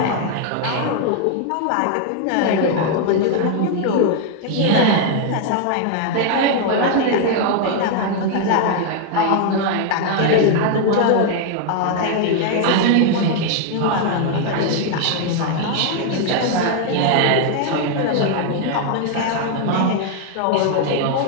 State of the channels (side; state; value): both; different; correlation 0.00